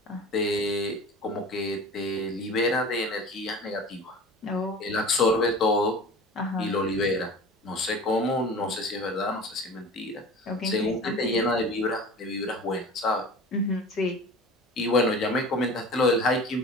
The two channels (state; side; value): normal; both; correlation 0.37